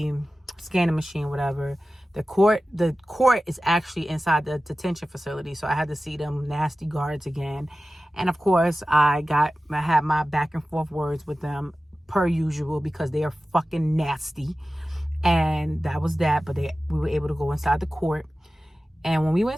scanning machine, whatever. The court is actually inside the detention facility, so I had to see them nasty guards again. And of course, I had my back and forth words with them per usual because they are fucking nasty. And that was that. But we were able to go inside the court. And when we went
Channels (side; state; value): both; normal; correlation 0.95